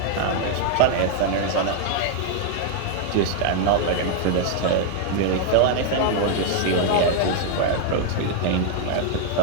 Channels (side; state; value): both; different; correlation 0.00